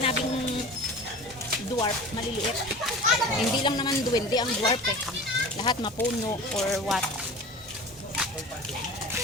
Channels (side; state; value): both; normal; correlation 0.37